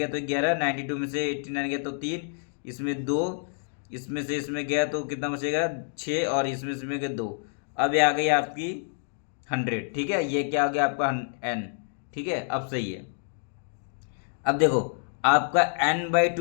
तो 11, 92 में से 89 गया तो 3, इसमें 2 इसमें से इसमें गया तो कितना बचेगा 6, और इसमें से इसमें गया 2। अब ये आ गई आपकी 100, ठीक है। ये क्या आ गया आपका n, ठीक है। अब सही है। अब देखो आपका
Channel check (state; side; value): silent; right; digital silence